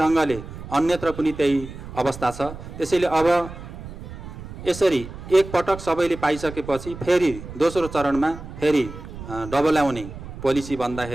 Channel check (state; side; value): noise; right; rumble, 12 dB below the sound